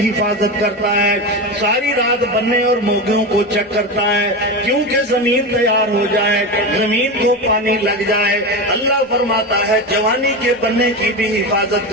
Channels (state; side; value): normal; both; correlation 0.20